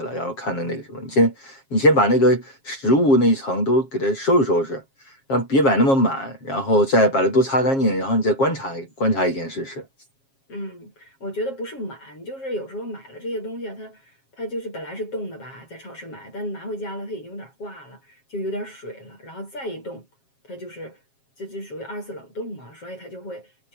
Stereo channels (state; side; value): late; right; 7.4 ms